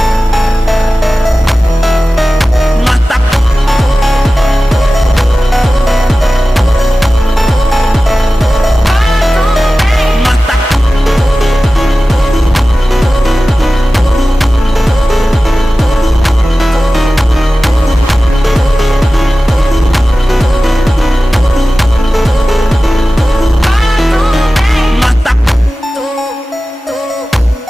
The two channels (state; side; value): normal; both; correlation 0.96